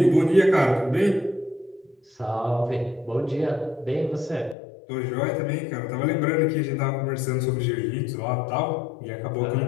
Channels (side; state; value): right; drops out; at 4.5 s